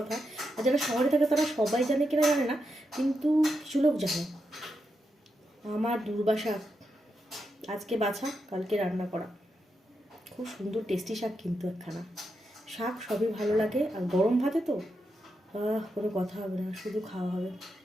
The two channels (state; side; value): normal; both; correlation 0.85